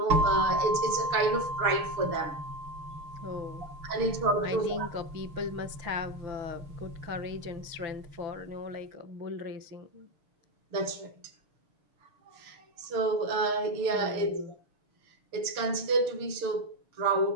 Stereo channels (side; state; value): left; late; 6.5 ms